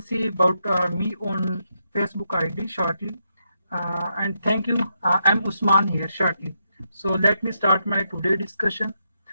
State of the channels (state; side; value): inverted; both; correlation -0.82